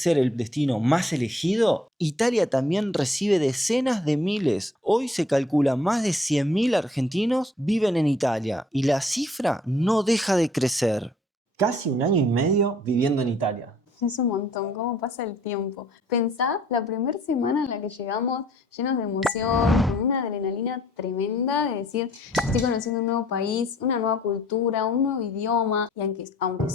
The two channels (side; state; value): both; normal; correlation 0.60